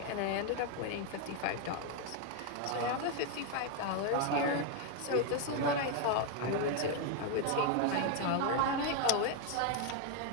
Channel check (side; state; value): both; different; correlation 0.01